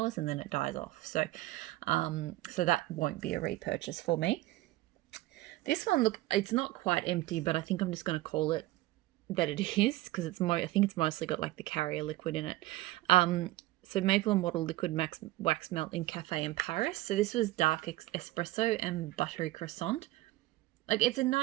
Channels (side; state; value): left; quieter; 17.7 dB